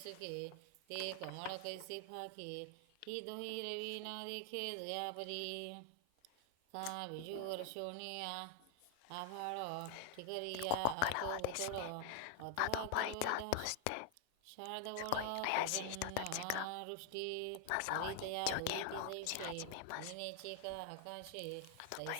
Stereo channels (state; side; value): different; both; correlation 0.00